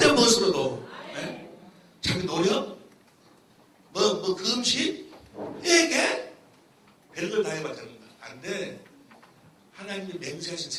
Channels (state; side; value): identical; both; correlation 1.00